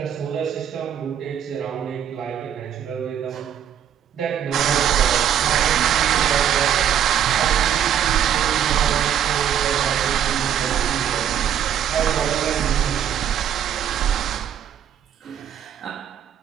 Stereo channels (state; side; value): quieter; left; 9.5 dB